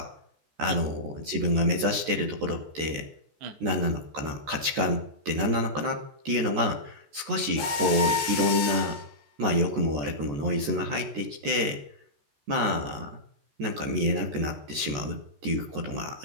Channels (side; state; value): left; late; 14 ms